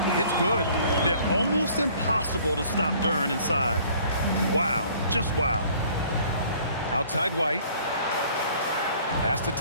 it's good. Yeah, almost impossible to stop Duren inside. Wow, just wow. Outside White. Pass to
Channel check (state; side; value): inverted; both; correlation -0.55